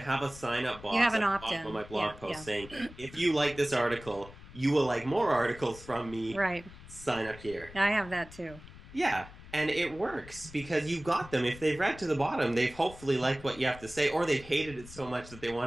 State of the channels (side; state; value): left; noise; rumble, 17 dB below the sound